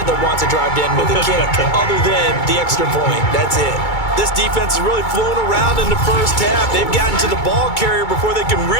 that wants to drive to end with a kick, other than the extra point. That's it. This defense has really flown around in the first half. They've gotten to the ball carrier before they can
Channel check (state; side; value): late; right; 2.2 ms